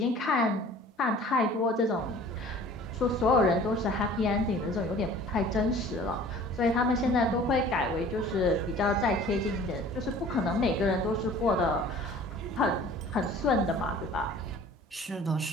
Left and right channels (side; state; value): both; normal; correlation 0.47